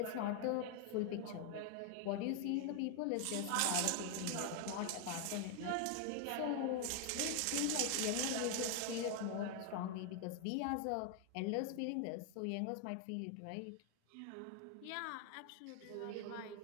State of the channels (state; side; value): different; both; correlation 0.00